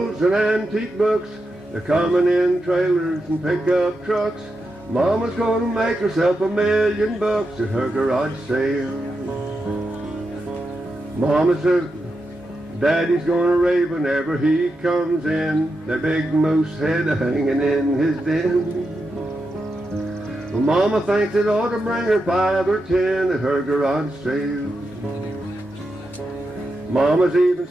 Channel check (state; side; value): normal; both; correlation 0.87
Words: and antique books. They're coming in trailers and pickup trucks. Mama's gonna make herself $1 million at her garage sale. Mama says Daddy's gonna rave whenever he comes in. That big moose head hanging in his den. Well, Mama thinks it ought to bring her 5 or 10 at her garage sale. Mama's even